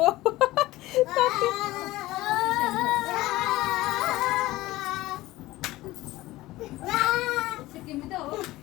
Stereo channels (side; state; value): right; quieter; 17.8 dB